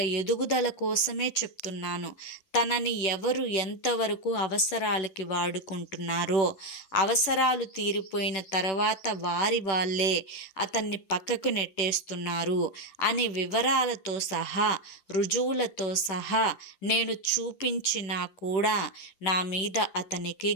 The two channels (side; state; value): right; late; 10 ms